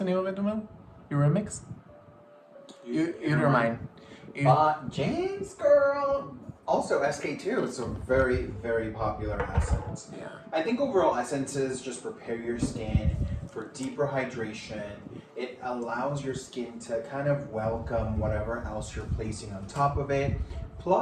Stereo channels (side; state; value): both; identical; correlation 1.00